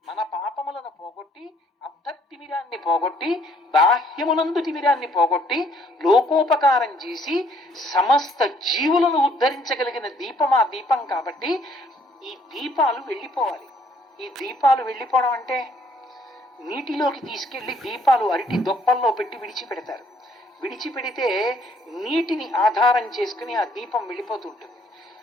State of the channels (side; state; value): both; normal; correlation 0.63